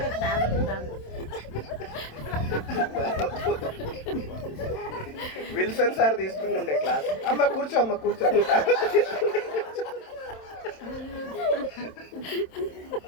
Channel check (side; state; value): right; late; 27 ms